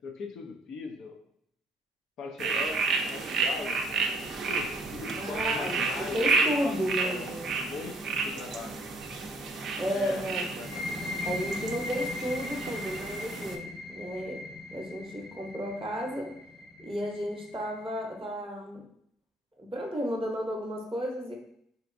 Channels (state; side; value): normal; both; correlation 0.61